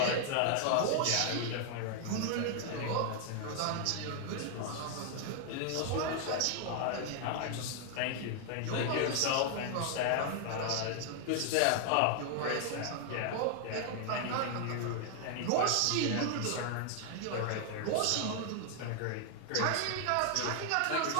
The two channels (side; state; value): both; different; correlation 0.00